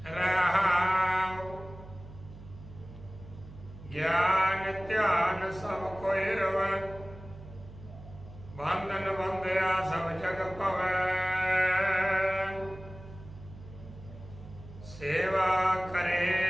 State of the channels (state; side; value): noise; right; hum, 16 dB below the sound